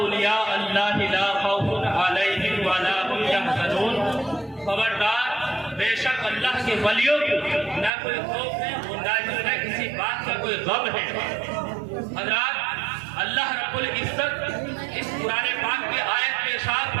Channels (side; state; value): left; drops out; at 7.9 s